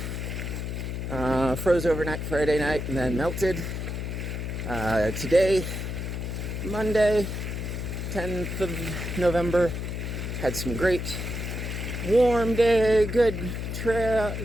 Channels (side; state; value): left; noise; hum, 4 dB below the sound